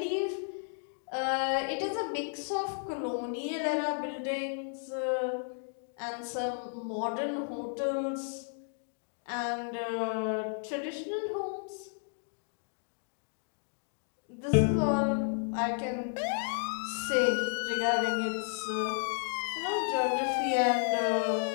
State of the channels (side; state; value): right; silent; 56 dB below the other